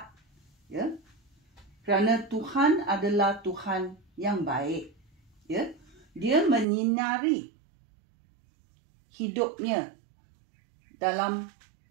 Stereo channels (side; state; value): left; drops out; at 6.7 s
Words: Ya. Kerana Tuhan adalah Tuhan yang baik. Ya. Dia menyinari hidupnya dalam